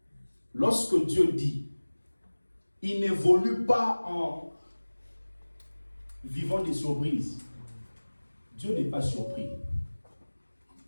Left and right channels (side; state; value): both; inverted; correlation -1.00